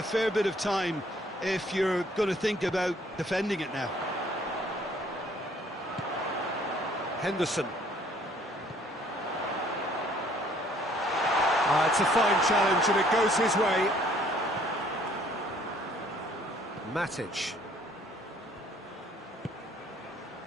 fair bit of time if you're going to think about defending it now. Henderson. It's a fine challenge and it goes his way. Matic.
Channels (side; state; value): both; normal; correlation 0.60